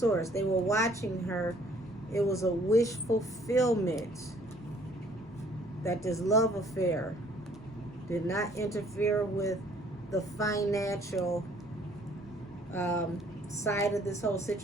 They were watching her. It was a wish fulfillment that this love affair did not interfere with the financial side of this whole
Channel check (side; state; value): both; normal; correlation 0.59